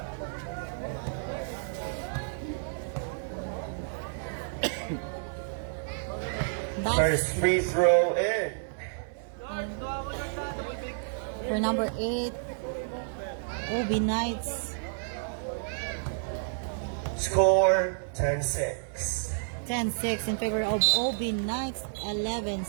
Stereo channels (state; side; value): silent; left; 58 dB below the other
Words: First free throw in. For number 8, OB Knights. Score 10-6. 10-6 in favor of OB Knights.